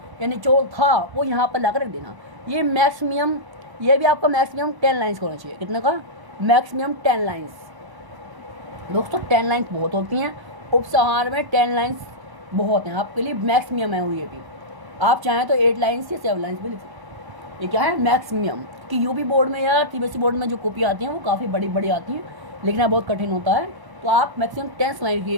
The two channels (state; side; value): late; left; 1.0 ms